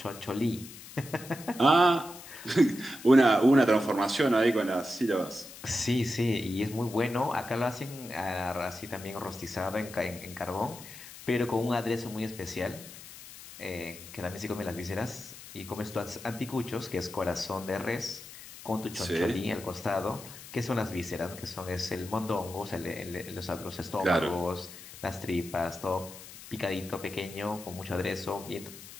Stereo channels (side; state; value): left; noise; hiss, 15 dB below the sound